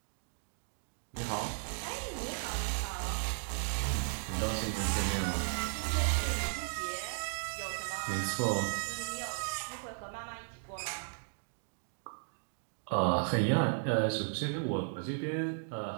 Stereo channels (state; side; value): silent; left; digital silence